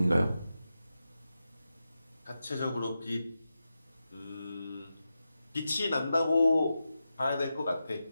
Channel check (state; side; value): inverted; both; correlation -0.91